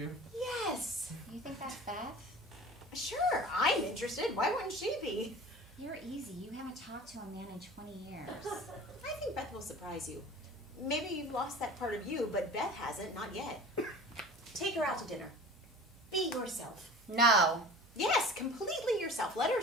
Yes. You think that's Beth? Sure, I'm interested. Why wouldn't she be? You're easy. You haven't talked to a man in 20 years. I think Beth will surprise you. Maybe you've lost that part of you, but Beth hasn't, not yet. Take her out to dinner. Be yourself. No. Yes, completely yourself. Let her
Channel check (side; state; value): right; noise; hum, 25 dB below the sound